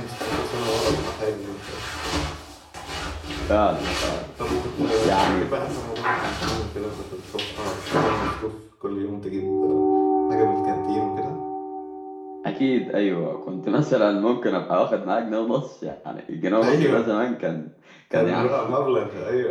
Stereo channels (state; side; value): identical; both; correlation 1.00